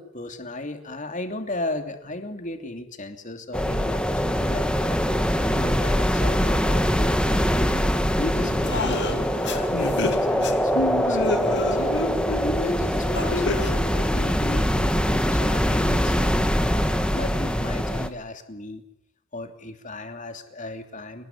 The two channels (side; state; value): both; normal; correlation 0.81